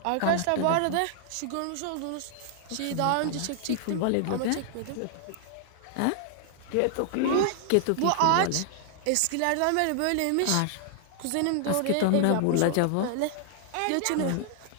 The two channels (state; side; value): different; both; correlation 0.00